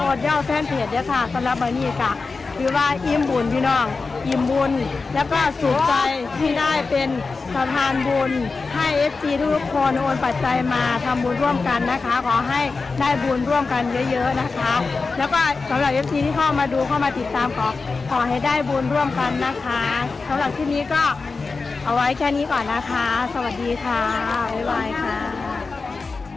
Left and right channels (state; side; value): quieter; right; 4.2 dB